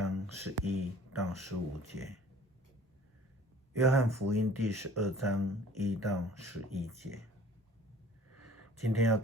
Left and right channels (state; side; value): normal; both; correlation 0.50